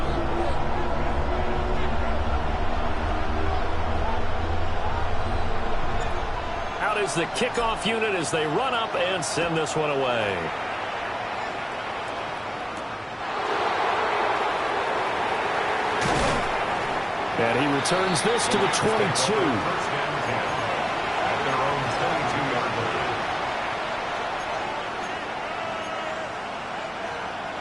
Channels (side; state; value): both; identical; correlation 1.00